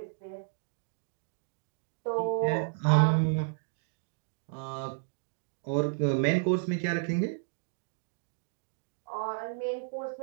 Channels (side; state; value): left; silent; digital silence